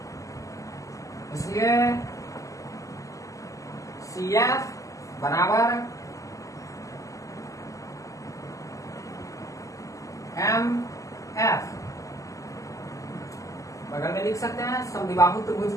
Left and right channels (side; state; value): right; late; 0.16 ms